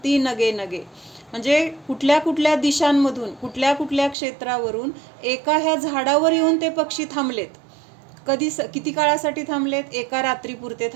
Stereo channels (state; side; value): drops out; left; at 4.2 s